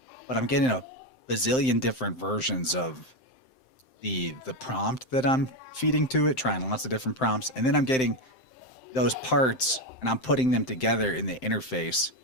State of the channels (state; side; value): late; right; 7.7 ms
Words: but I'm getting a bazillion different versions of the prompt that I'm feeding to it, trying lots of different prompts, and then I'm getting those parts and I'm putting them together in the interface